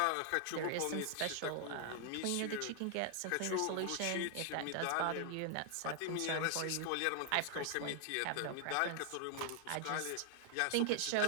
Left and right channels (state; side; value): different; both; correlation 0.00